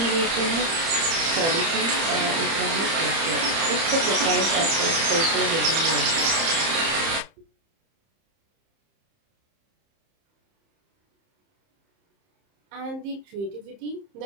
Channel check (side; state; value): left; late; 30 ms